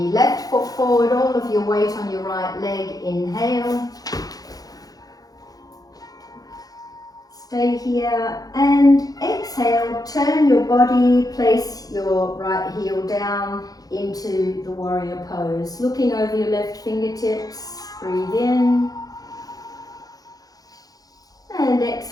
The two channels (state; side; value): late; right; 0.18 ms